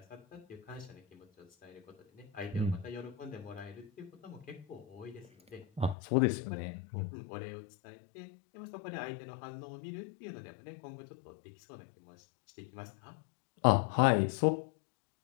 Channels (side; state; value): right; drops out; at 6.0 s